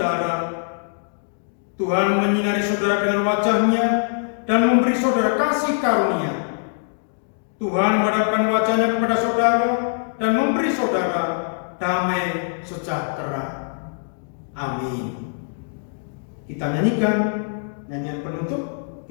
Tuhan menyinari saudara dengan wajah-Nya dan memberi saudara kasih karunia. Tuhan menghadapkan wajah-Nya kepada saudara dan memberi saudara damai sejahtera. Amin. Kita nyanyikan nyanyian penutup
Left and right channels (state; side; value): silent; right; digital silence